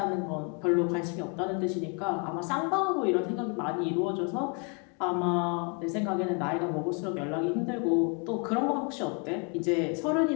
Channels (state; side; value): quieter; right; 35.0 dB